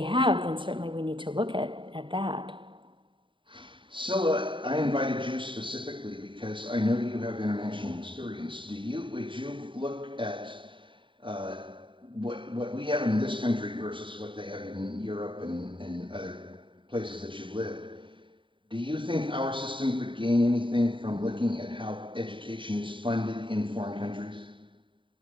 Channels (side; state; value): left; late; 0.24 ms